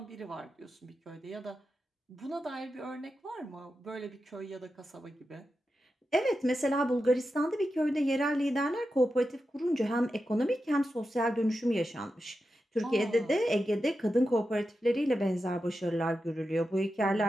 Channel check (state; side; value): normal; both; correlation 0.90